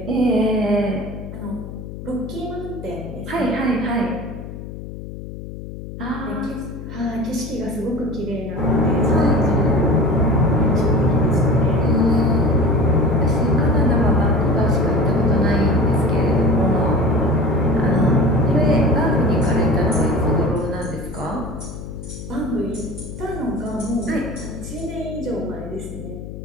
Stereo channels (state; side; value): noise; left; hum, 11 dB below the sound